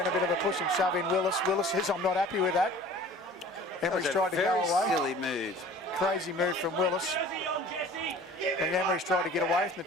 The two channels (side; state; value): both; normal; correlation 0.46